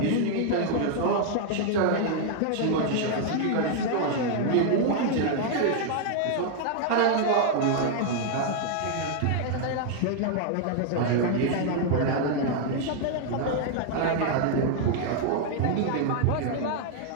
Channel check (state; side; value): different; both; correlation 0.00